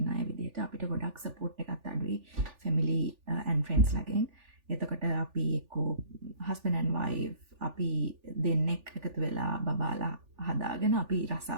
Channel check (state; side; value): late; left; 3.4 ms